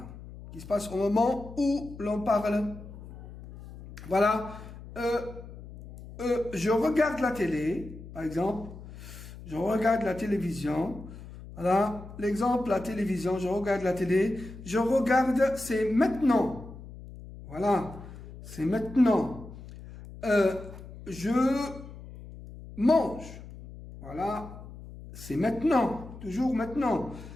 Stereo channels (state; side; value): noise; left; hum, 15 dB below the sound